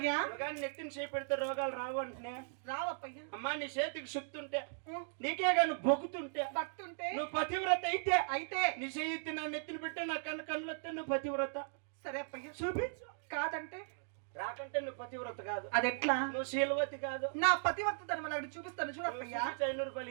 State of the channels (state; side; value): silent; left; digital silence